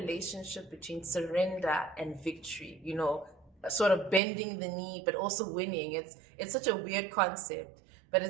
between surrender and victory, sort of bending the knee, but also winning. It's such a weird concept, but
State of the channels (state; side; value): drops out; left; at 4.2 s